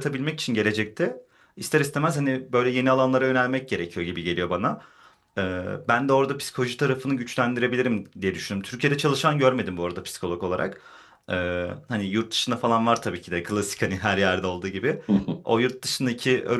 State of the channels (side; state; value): both; identical; correlation 1.00